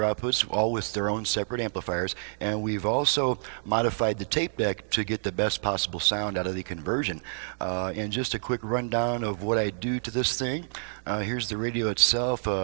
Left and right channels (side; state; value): left; silent; digital silence